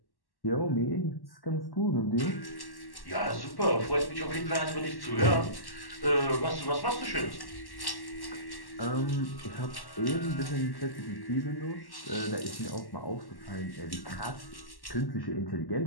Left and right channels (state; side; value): late; right; 1.1 ms